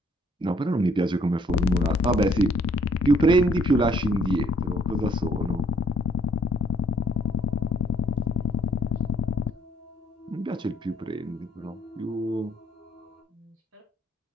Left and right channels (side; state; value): both; normal; correlation 0.66